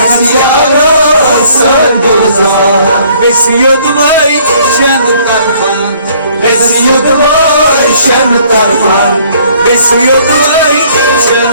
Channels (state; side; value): inverted; both; correlation -0.60